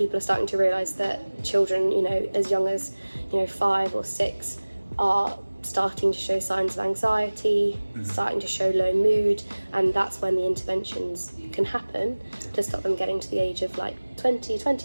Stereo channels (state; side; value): inverted; both; correlation -1.00